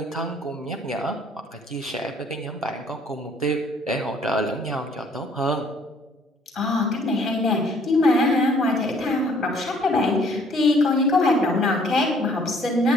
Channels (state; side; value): normal; both; correlation 0.60